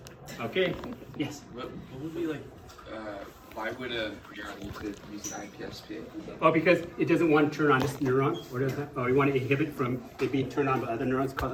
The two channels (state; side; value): identical; both; correlation 1.00